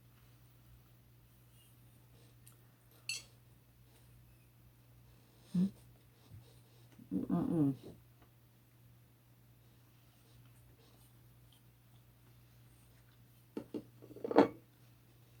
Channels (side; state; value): both; identical; correlation 1.00